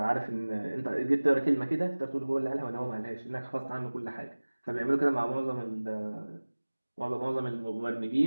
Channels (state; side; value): inverted; both; correlation -1.00